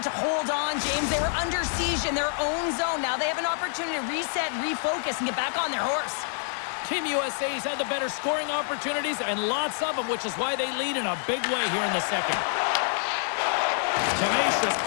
hold on, James. They were under siege in their own zone. Now they have an opportunity to reset, refocus, and get back on their horse. Team USA's had the better scoring opportunities and lots of them, which is why they lead in a big way here in the second. Tenacious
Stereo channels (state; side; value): silent; right; 58 dB below the other